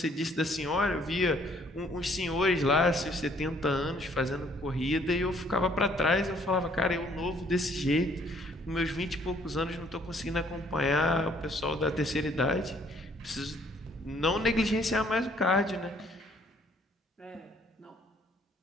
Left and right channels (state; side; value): normal; both; correlation 0.62